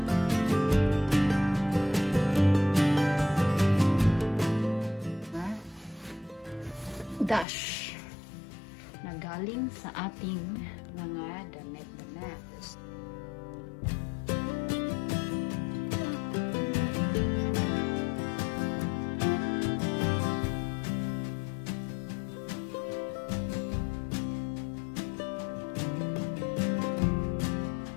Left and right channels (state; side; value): drops out; right; at 7.5 s